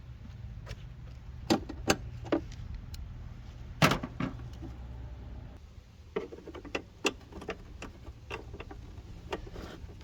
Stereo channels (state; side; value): identical; both; correlation 1.00